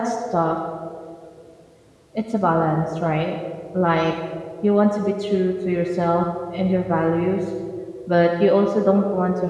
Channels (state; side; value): identical; both; correlation 1.00